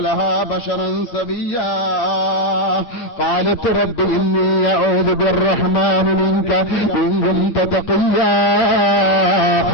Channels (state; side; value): late; right; 8.3 ms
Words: لها بشرا سويا قالت رب إني أعوذ بالرحمن منك إن كنت تقيا